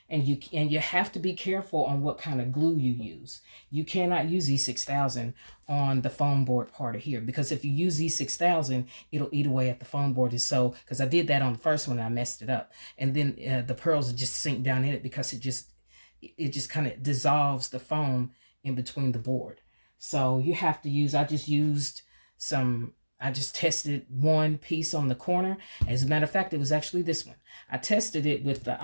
you have to be careful on what kind of glue you use. You cannot use E6000 on the foam board part of here, because if you use E6000, it'll eat away at the foam board. And so, because I did that on the first one and I messed it up. And then the pearls will just sink down in it because it just kind of dissolves the foam in between the board. So you have to use, I just tested one piece on the corner. As a matter of fact, it was actually this one. I tested it with the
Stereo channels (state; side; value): inverted; both; correlation -1.00